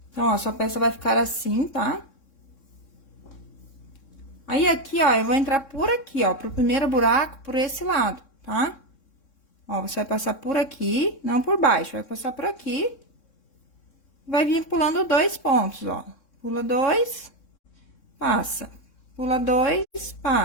Então, ó, sua peça vai ficar assim, tá? Aí, aqui, ó, eu vou entrar por aqui, ó, pro primeiro buraco, por esse lado, tá? Ó, você vai passar por aqui, não por baixo, vai passar por aqui. Vai vir pulando 2 pontos, ó. Pula 2, passa. Pula 2,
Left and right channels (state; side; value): late; right; 3.6 ms